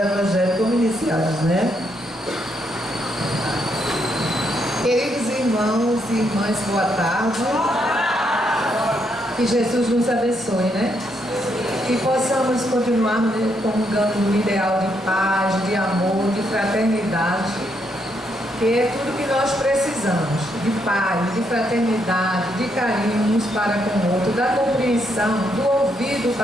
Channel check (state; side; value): normal; both; correlation 0.76